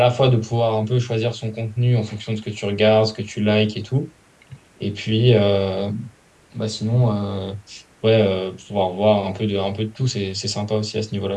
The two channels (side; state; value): both; identical; correlation 1.00